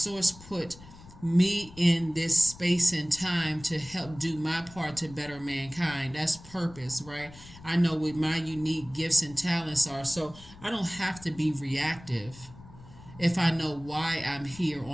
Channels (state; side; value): noise; left; rumble, 19 dB below the sound